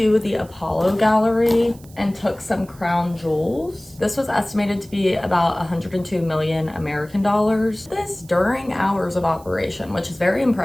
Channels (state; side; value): noise; right; hiss, 25 dB below the sound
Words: the Apollo Gallery and took some crown jewels. This was estimated to be about 102 million American dollars. This during hours of operation, which is very